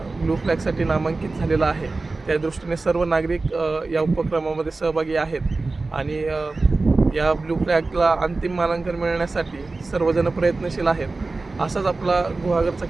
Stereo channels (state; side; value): quieter; left; 3.5 dB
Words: ब्लू फ्लॅगसाठी नामांकित झालेला आहे. त्या दृष्टीने सर्व नागरिक या उपक्रमामध्ये सहभागी आहेत आणि या ब्लू फ्लॅगला अंतिम मानांकन मिळण्यासाठी सर्वजण प्रयत्नशील आहेत. असाच आपला गुहागरचा